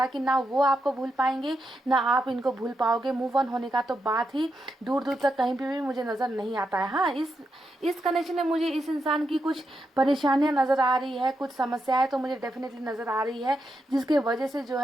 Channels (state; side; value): normal; both; correlation 0.84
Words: है कि ना वो आपको भूल पाएंगे ना आप इनको भूल पाओगे। मूव ऑन होने का तो बात ही दूर दूर तक कहीं पे भी मुझे नज़र नहीं आता है। हाँ, इस कनेक्शन में मुझे इस इंसान की कुछ परेशानियां नज़र आ रही है, कुछ समस्याएं तो मुझे डेफिनेटली नज़र आ रही है, जिसके वजह से जो